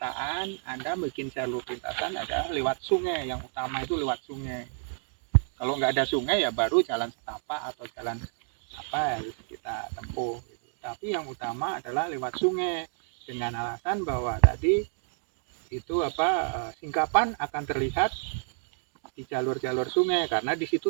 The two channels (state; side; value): silent; left; digital silence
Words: Anda bikin jalur lintasan adalah lewat sungai, yang utama itu lewat sungai. Kalau nggak ada sungai ya baru jalan setapak atau jalan apa harus kita tempuh. Tapi yang utama adalah lewat sungai, dengan alasan bahwa tadi itu singkapan akan terlihat di jalur-jalur sungai karena di